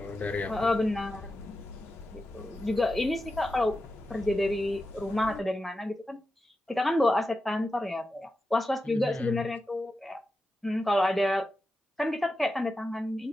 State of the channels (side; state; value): both; normal; correlation 0.91